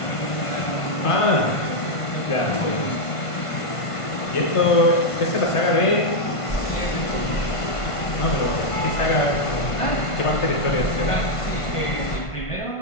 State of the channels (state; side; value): late; right; 1.5 ms